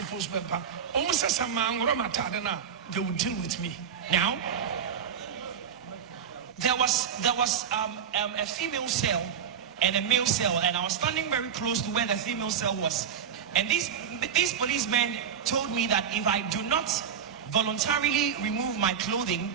forced Bempah. Almost as a man, Ramatadana, they would deal with me. Now, there was a female cell and a male cell, and I was standing very close to where the female cell was. And these policemen told me that if I do not voluntarily remove my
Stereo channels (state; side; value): quieter; left; 7.8 dB